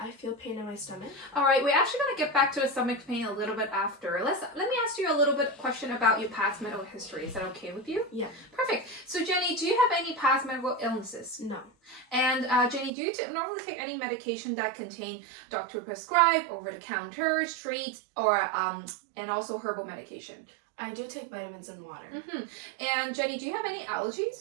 feel pain in my stomach. All right, we're actually going to get back to the stomach pain a little bit after. Let me ask you a little bit question about your past medical history. Is that okay with you? Yeah. Perfect. So Jenny, do you have any past medical illnesses? No. And Jenny, do you normally take any medication that contain doctor prescribed, over-the-counter, street, or and also herbal medication? I do take vitamins and water. And Jenny, do you have any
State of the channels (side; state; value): left; drops out; at 12.9 s